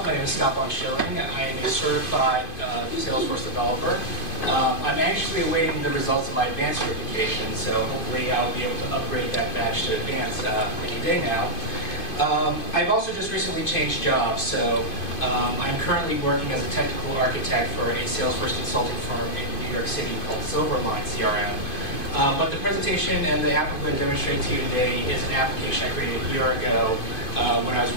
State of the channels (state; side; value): late; right; 2.5 ms